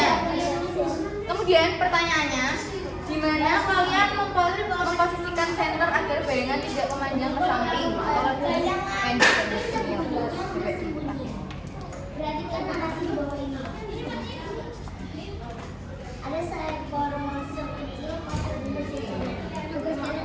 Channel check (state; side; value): identical; both; correlation 1.00